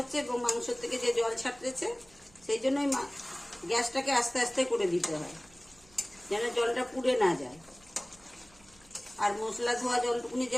এবং মাংস থেকে যে জল ছাড়তেছে সেই জন্যই গ্যাসটাকে আস্তে আস্তে করে দিতে হয়, যেন জলটা পুড়ে না যায়। আর মশলা ধোয়া জলটুকুনি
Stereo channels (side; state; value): right; noise; hum, 27 dB below the sound